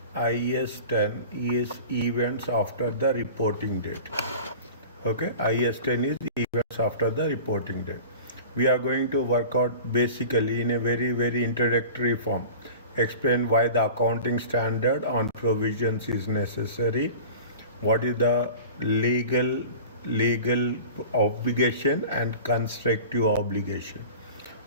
IAS 10 is events after the reporting date. Okay, IAS 10 is events after the reporting date. We are going to work out basically in a very introductory form. Explain why the accounting standard on provisions is necessary. What is the legal obligation and constructive obligation.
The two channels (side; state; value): both; inverted; correlation -0.38